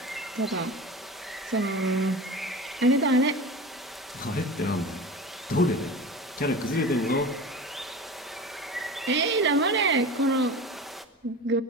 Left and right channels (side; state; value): both; normal; correlation 0.32